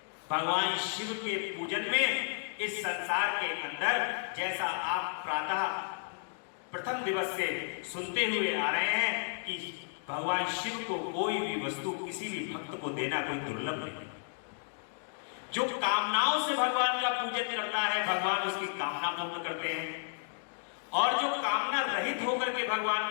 भगवान शिव के पूजन में इस संसार के अंदर, जैसा आप प्रातः प्रथम दिवस से सुनते हुए आ रहे हैं कि भगवान शिव को कोई भी वस्तु किसी भी भक्त को देना कोई दुर्लभ नहीं। जो कामनाओं से भगवान का पूजन करता है, भगवान उसकी कामना पूर्ण करते हैं, और जो कामना रहित होकर के भगवान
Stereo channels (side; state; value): right; silent; digital silence